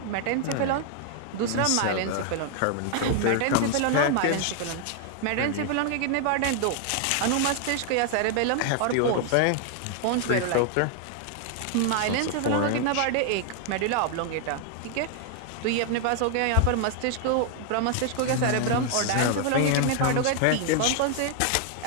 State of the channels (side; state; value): both; different; correlation 0.00